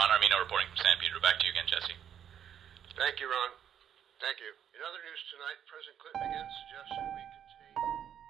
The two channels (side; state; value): left; quieter; 9.3 dB